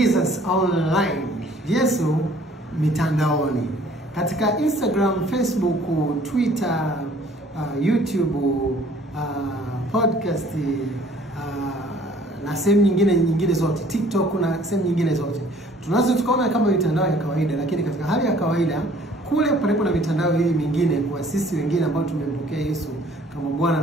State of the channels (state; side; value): normal; both; correlation 0.56